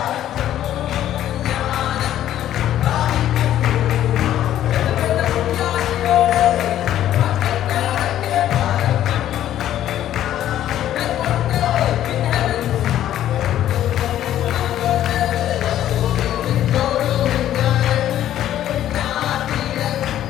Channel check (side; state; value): right; quieter; 12.0 dB